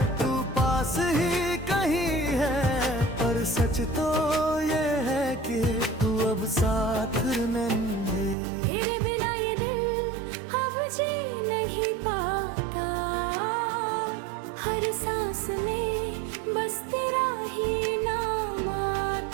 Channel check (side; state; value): left; drops out; at 8.3 s